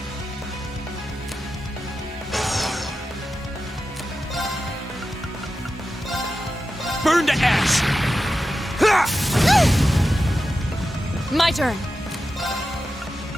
Burn to ash. Ha! My turn.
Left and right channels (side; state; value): both; normal; correlation 0.91